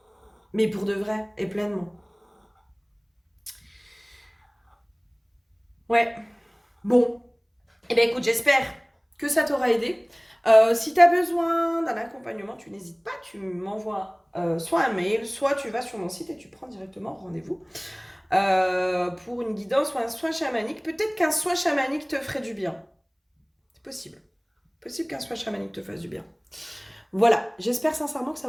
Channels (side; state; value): both; identical; correlation 1.00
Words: Mais pour de vrai, et pleinement. Ouais. Bon. Eh bien, écoute, j'espère que ça t'aura aidé. Si tu as besoin d'un accompagnement, tu n'hésites pas, tu m'envoies soit un mail, soit tu vas sur mon site et tu prends directement rendez-vous pour une guidance ou un soin chamanique. Peut-être qu'un soin chamanique te ferait du bien. C'est possible. Possible qu'un soin chamanique te fasse du bien. Voilà, j'espère sincèrement que ça